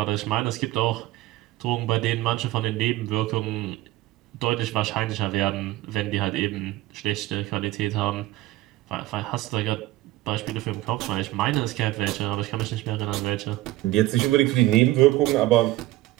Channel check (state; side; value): quieter; left; 17.3 dB